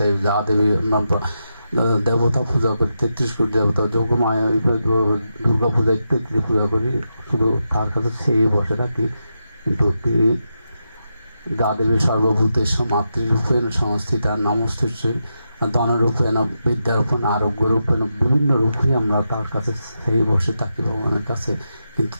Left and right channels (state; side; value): inverted; both; correlation -0.86